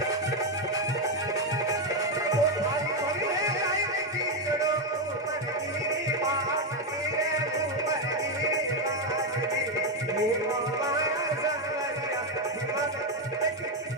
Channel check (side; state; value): both; normal; correlation 0.06